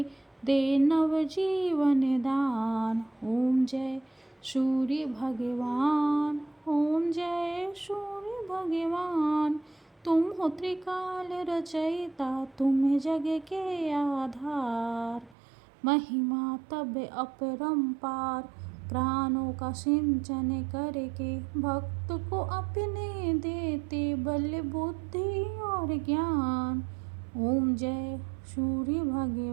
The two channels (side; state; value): left; drops out; at 15.4 s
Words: दे नव जीवन दान। ओम जय सूर्य भगवान ओम जय सूर्य भगवान। तुम हो त्रिकाल रचयिता तुम जग के आधार। महिमा तब अपरंपार प्राणों का सिंचन करके। भक्त को अपने देते बल बुद्धि और ज्ञान। ओम जय सूर्य